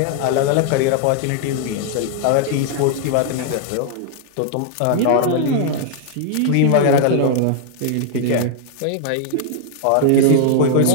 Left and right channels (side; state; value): both; different; correlation 0.00